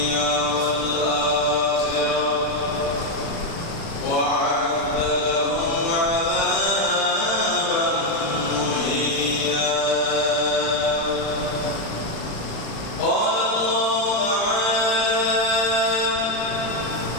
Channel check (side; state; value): right; late; 36 ms